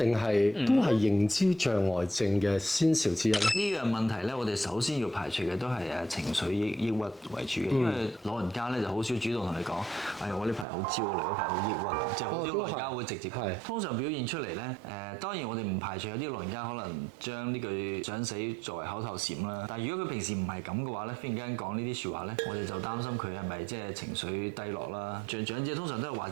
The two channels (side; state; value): left; drops out; at 10.7 s